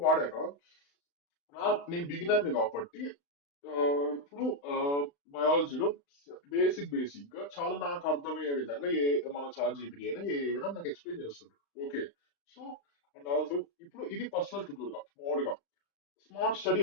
వాడాక నేను బిగినర్ కాబట్టి ఆ, ఇప్పుడు బయాలజీలో బేసిక్ గా చాలా నాకు అర్థమయ్యే విధంగా మన చాట్ జీపీటీ అయినా ఏ అయినా నాకు ఎక్స్ప్లెయిన్ చేస్తుంది. ఓకే. సో అండ్ ఆల్సో ఇప్పుడు ఇది పర్సనల్ ట్యూటర్ గా మామూలుగా స్మార్ట్ స్టడీ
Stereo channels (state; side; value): late; right; 35 ms